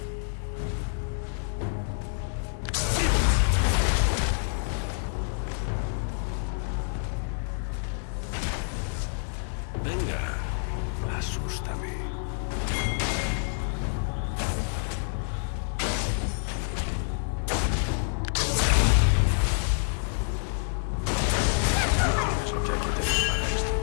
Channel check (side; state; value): right; silent; 58 dB below the other